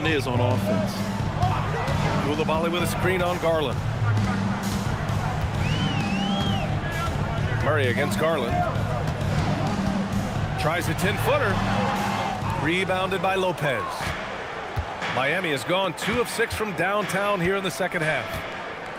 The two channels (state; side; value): identical; both; correlation 1.00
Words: is on offense. Coulibaly with a screen on Garland. Murray against Garland. Tries a 10-footer. Rebounded by Lopez. Miami has gone 2 of 6 from downtown here in the second half.